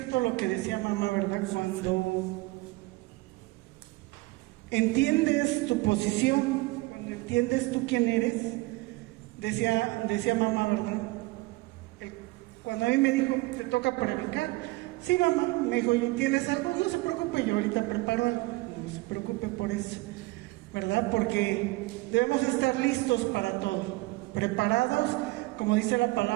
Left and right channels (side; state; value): left; quieter; 21.8 dB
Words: lo que decía mamá, ¿verdad? Cuando entiendes tu posición, cuando entiendes tú quién eres, decía mamá, ¿verdad? Cuando a mí me dijo, te toca predicar, sí mamá, me dijo, ¿tienes algo? No se preocupe, yo ahorita preparo algo, no se preocupe por eso, ¿verdad? Porque debemos estar listos para todo, preparados, como dice la